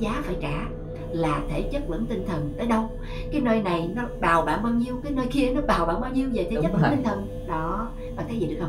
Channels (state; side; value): identical; both; correlation 1.00